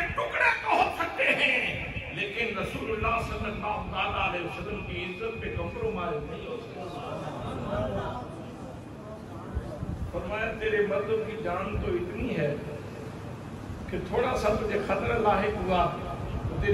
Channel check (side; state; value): both; identical; correlation 1.00